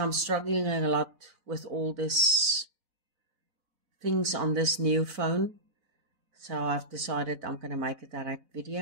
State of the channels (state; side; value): late; left; 4.0 ms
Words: struggling a lot with all this things on this new phone. So I've decided I'm going to make a direct